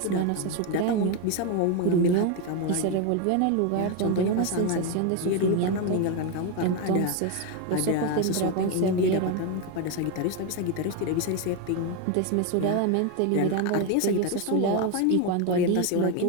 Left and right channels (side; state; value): both; different; correlation 0.02